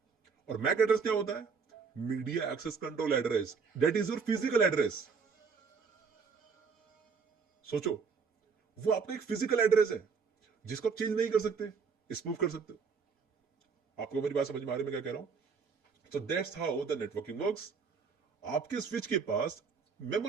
और मैक एड्रेस क्या होता है? Media access control address, that is your physical address. सोचो, वो आपका एक फिजिकल एड्रेस है जिसको आप चेंज नहीं कर सकते, स्पूफ कर सकते हो। आपको मेरी बात समझ में आ रही है मैं क्या कह रहा हूं? So that's how the networking works. आपके स्विच के पास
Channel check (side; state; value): left; quieter; 5.6 dB